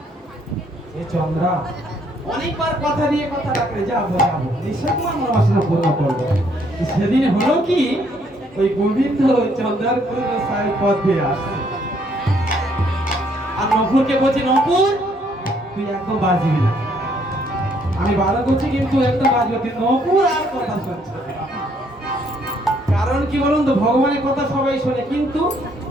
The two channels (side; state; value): both; normal; correlation 0.68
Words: এ চন্দ্রা অনেকবার কথা দিয়ে কথা রাখলে যাবো যাবো, নিশ্চয় তোমার মনোবাসনা পূর্ণ করবো। সেদিন হলো কি, ওই গোবিন্দ চন্দ্রার সাহেব পথ দিয়ে আসছে, আর নপুরকে বলছে নপুর তুই একদম বাজবি না। আমি ভালো করছি কিন্তু একদম বাজবে, কিন্তু নপুর আর কথা শুনছে না। কারণ কি বলুন তো, ভগবানের কথা সবাই শোনে কিন্তু